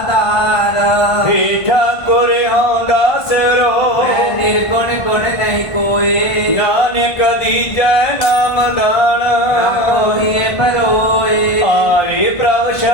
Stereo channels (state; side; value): late; right; 1.5 ms